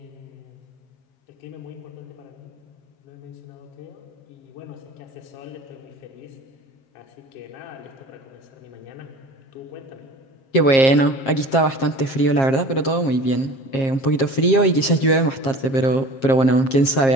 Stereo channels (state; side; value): late; right; 7.5 ms